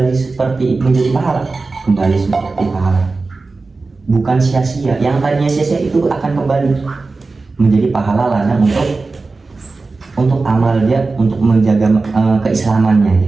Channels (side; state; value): left; quieter; 3.8 dB